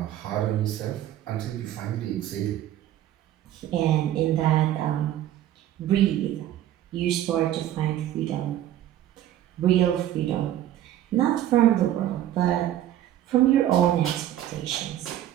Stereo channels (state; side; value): quieter; left; 12.4 dB